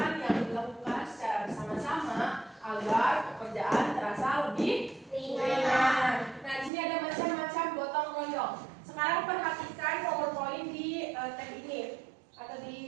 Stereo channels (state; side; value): drops out; left; at 6.7 s